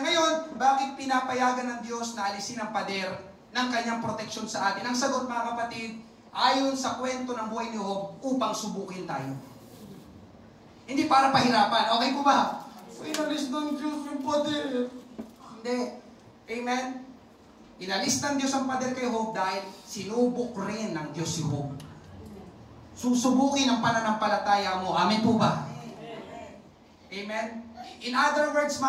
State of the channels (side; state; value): both; identical; correlation 1.00